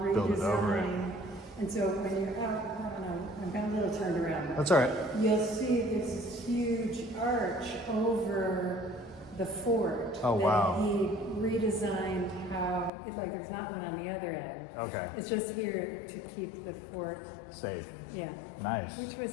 redesign. Build it over it. And so when you're out, I'm got a little turned around. That's all right. You'll see there's this huge arch over the fort. Oh, wow. That he redesigned how, like there's not one on the other end. Okay. It's just here to keep the fort Safe. Yeah. Nice. Which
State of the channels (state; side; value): drops out; right; at 12.9 s